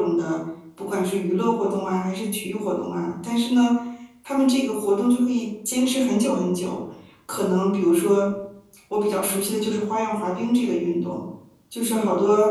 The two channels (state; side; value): identical; both; correlation 1.00